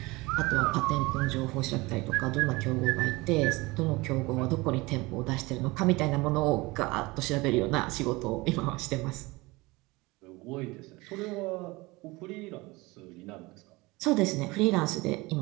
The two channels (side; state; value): left; quieter; 22.8 dB